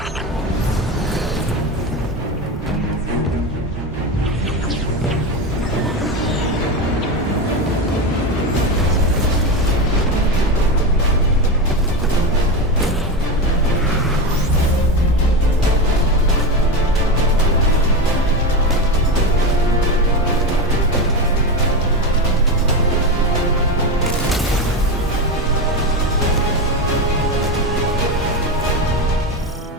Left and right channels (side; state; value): both; normal; correlation 0.18